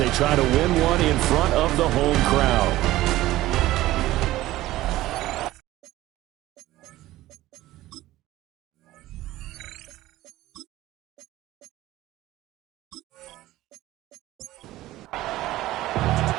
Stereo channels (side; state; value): left; quieter; 16.2 dB